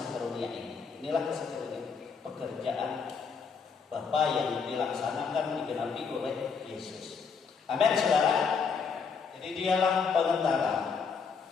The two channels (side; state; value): right; quieter; 5.7 dB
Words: karunia ini. Inilah kasih karunia, pekerjaan Bapa yang dilaksanakan digenapi oleh Yesus. Amin, saudara. Jadi dialah pengantara.